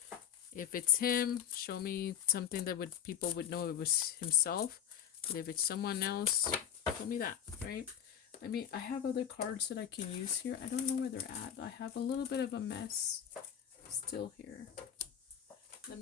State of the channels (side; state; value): right; quieter; 9.2 dB